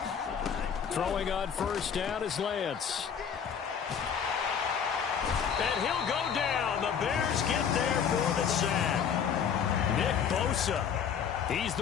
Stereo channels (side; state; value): right; quieter; 7.5 dB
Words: Throwing on first down is Lance. And he'll go down. The Bears get there for the sack. Nick Bosa. He's